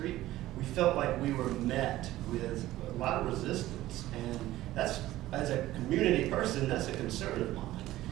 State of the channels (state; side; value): quieter; left; 15.6 dB